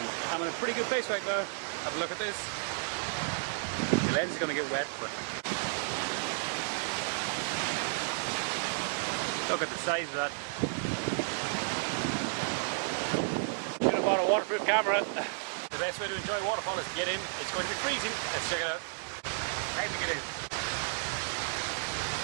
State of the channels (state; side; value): silent; left; digital silence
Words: I'm in a pretty good place right now. Have a look at this. The lens is going to get wet, but look at the size of that. Should have bought a waterproof camera. The best way to enjoy a waterfall is to get in. It's going to be freezing. Let's check it out. Time to get in.